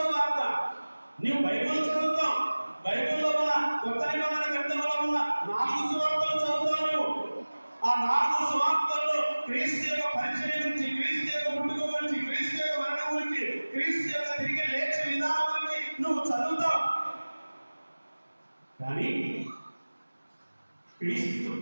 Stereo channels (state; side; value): inverted; both; correlation -1.00